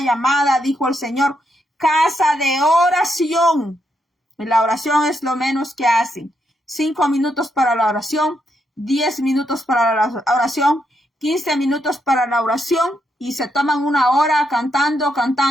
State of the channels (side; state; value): both; normal; correlation 0.79